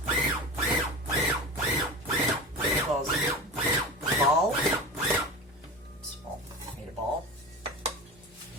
Ball. Small. Made a ball.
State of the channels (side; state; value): both; normal; correlation 0.29